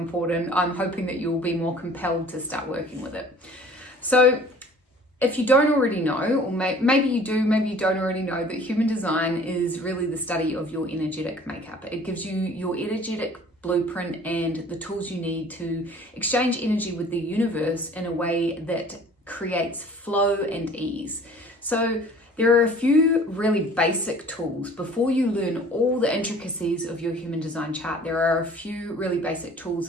I'm hoping that you'll be more compelled to start working with it. So if you don't already know, or maybe you do, maybe you don't already know, that human design is really the study of your energetic makeup. It gives you your energetic blueprint and the tools you need to exchange energy with the universe in a way that creates flow and ease. So there are a few really basic tools. Before you learn all the intricacies of your human design chart, there are a few really basic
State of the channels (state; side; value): normal; both; correlation 0.49